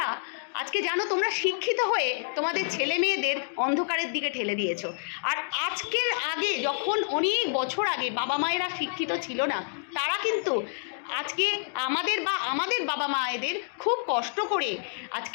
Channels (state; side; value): silent; right; digital silence